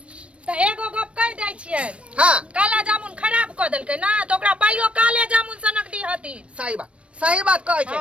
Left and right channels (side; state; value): left; late; 0.061 ms